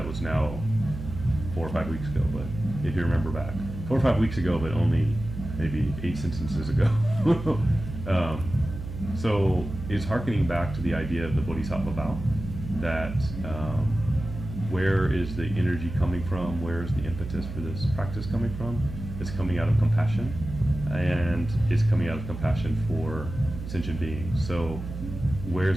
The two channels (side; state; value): right; noise; hum, 9 dB below the sound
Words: was now 4 or 5 weeks ago, but if you remember back, 4 or 5 weeks ago, but only maybe 8 sentences ago. So it's hearkening back to the idea of the Bodhisattva vow, that where is the energy coming from? Where is the impetus for this practice coming from? It's coming out of compassion, and it's coming out of compassion for sentient beings. So